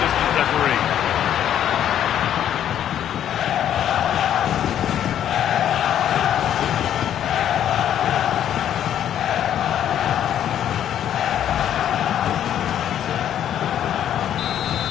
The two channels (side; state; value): right; quieter; 10.4 dB